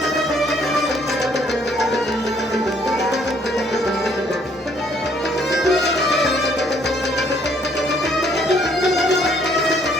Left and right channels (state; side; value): normal; both; correlation 0.65